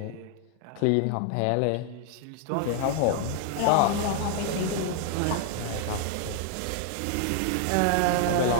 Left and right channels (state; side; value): different; both; correlation 0.00